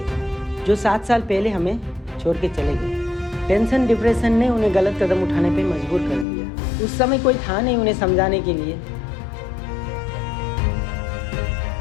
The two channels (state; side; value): drops out; right; at 6.2 s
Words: जो 7 साल पहले हमें छोड़ के चले गए। टेंशन डिप्रेशन ने उन्हें गलत कदम उठाने पे मजबूर कर दिया। उस समय कोई था नहीं उन्हें समझाने के लिए।